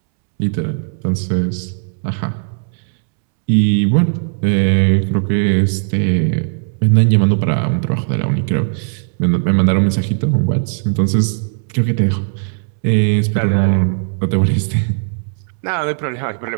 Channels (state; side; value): silent; left; 68 dB below the other